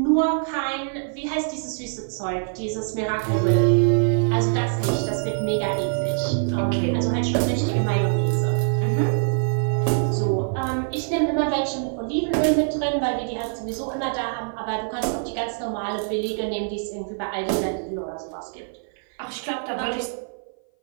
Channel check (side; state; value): left; silent; 57 dB below the other